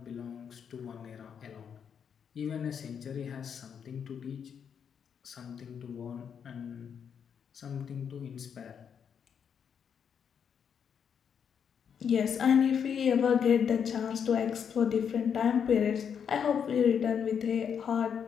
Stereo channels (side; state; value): right; quieter; 7.5 dB